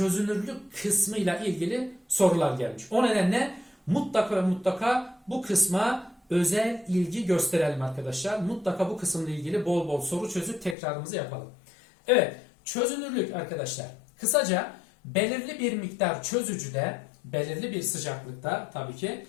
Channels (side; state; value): right; drops out; at 10.8 s